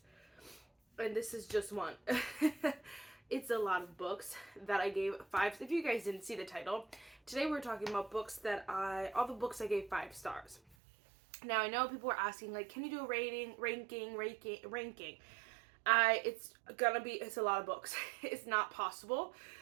and this is just one. It's a lot of books that I gave 5. If you guys didn't see the title, today we're talking about books that all the books I gave 5 stars. Now, I know people are asking, like, can you do a ranking? It's a lot of books. It's not possible.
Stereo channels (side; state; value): left; drops out; at 10.8 s